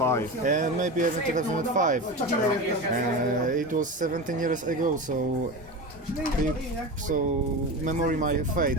And maybe even 2005. It was 17 years ago, so memory might fade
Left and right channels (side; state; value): both; normal; correlation 0.25